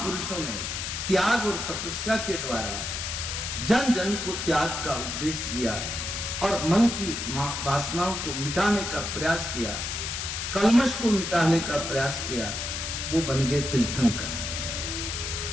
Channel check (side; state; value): left; noise; hiss, 4 dB below the sound